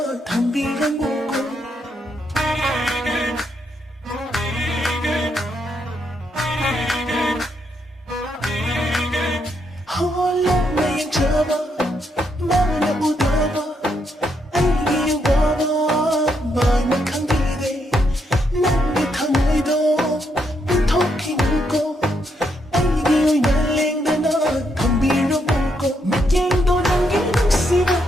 담비랑 먹고 홀로 매일 잡아 마음에 묻어봐 알기 와봐 마음이 감기돼 난게 탕의도 빈토끼 묻고 알기 날린다 너 담비랑 먹고 맥갱도 남기는 씨가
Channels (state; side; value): normal; both; correlation 0.78